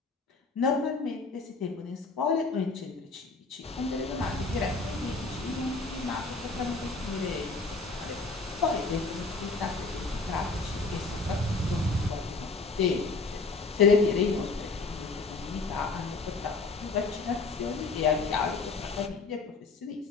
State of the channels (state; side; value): quieter; right; 3.9 dB